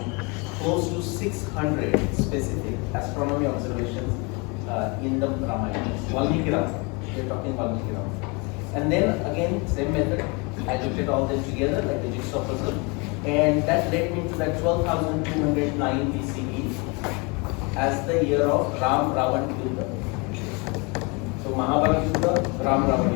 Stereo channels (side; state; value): right; quieter; 29.6 dB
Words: close to 600 specific astronomy observations in the Ramayana. Valmiki Ram. We're talking Valmiki Ram. And then again, same method. I looked at all them together like a jigsaw puzzle, and that led me to that 12,209 BCE as the year of Ram Ravan Yuddha. So Mahabharata Yuddha, Ram Ravan